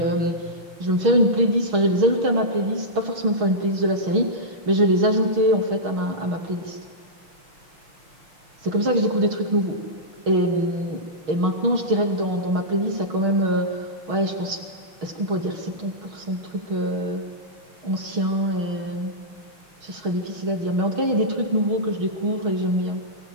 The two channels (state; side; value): late; left; 6.3 ms